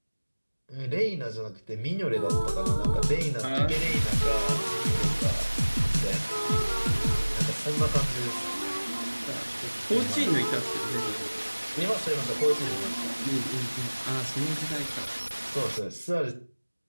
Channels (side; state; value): both; inverted; correlation -1.00